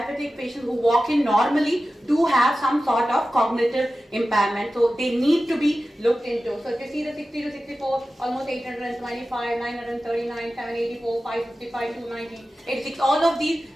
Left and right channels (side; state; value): both; normal; correlation 0.94